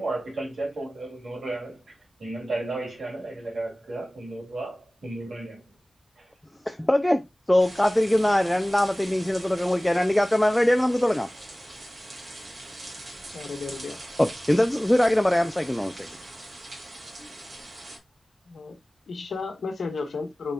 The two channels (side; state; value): both; normal; correlation 0.98